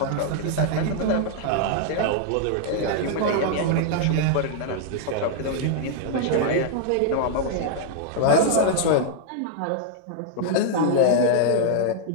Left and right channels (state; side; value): different; both; correlation -0.01